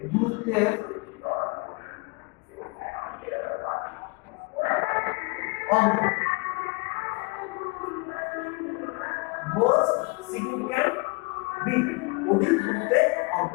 গুরুত্বের অঙ্ক, মোস্ট সিগনিফিক্যান্ট বিট, অধিক গুরুত্বের অঙ্ক।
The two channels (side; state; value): right; quieter; 28.7 dB